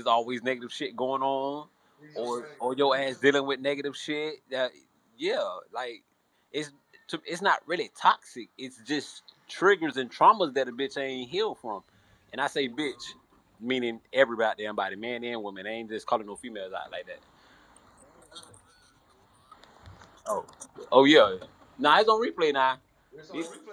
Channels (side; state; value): both; identical; correlation 1.00